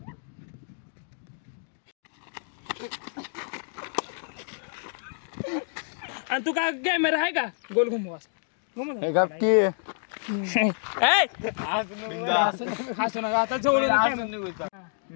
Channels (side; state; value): right; silent; digital silence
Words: आणि तू काय कॅमेरा आहे का गोल घुमवा हसू नका आता जवळ